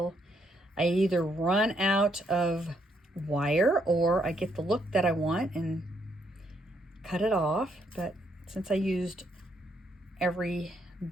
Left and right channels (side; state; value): both; normal; correlation 0.74